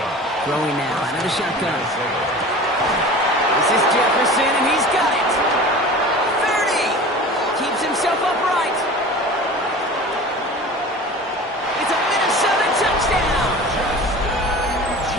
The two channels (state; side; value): normal; both; correlation 0.38